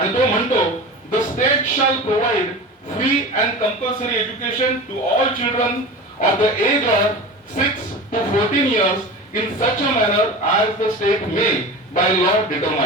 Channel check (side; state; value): both; normal; correlation 0.32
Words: तो म्हणतो, the state shall provide free and compulsory education to all children of the age of 6 to 14 years in such a manner as the state may by law